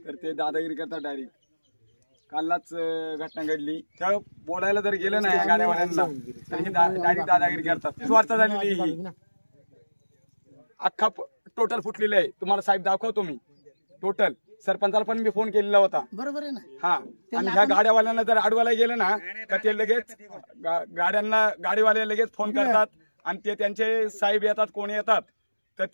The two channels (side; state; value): both; inverted; correlation -1.00